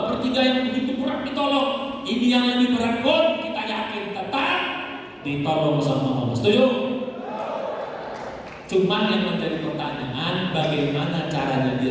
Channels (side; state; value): both; identical; correlation 1.00